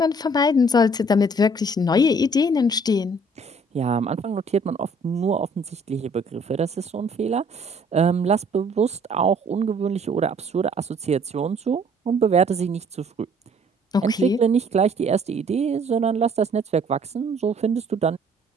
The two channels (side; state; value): both; normal; correlation 0.58